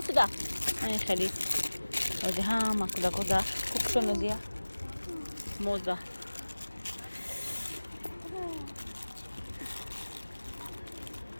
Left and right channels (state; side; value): inverted; both; correlation -1.00